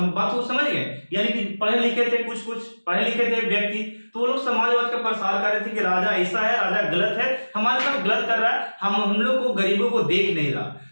को समझ गए? यानी कि पढ़े लिखे थे, कुछ पढ़े लिखे थे व्यक्ति, तो वो लोग समाजवाद का प्रसार कर रहे थे कि राजा ऐसा है, राजा गलत है, हमारे साथ गलत कर रहा है, हम लोग को गरीबों को देख नहीं रहा।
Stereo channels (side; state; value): both; inverted; correlation -1.00